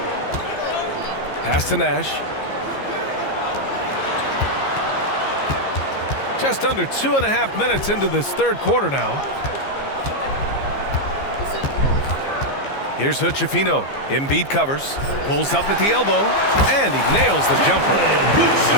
Pass to Nash. Just under 2.5 minutes into this third quarter now. Here's Hood-Schifino. Embiid covers, pulls up at the elbow, and he nails the jumper.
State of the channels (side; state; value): right; late; 15 ms